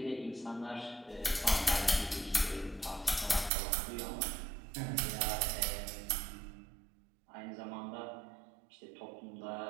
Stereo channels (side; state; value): left; drops out; at 3.5 s